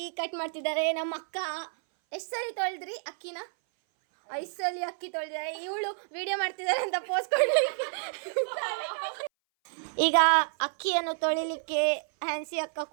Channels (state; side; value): silent; left; 58 dB below the other